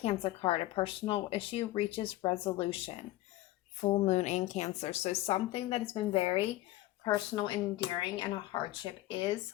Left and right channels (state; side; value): quieter; right; 16.8 dB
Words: card. A personal issue reaches resolution. Full moon in Cancer. So something that has been very personal, endearing, and a hardship is